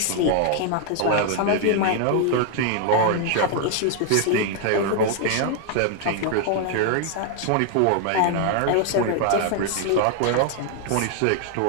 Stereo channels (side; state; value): both; different; correlation 0.00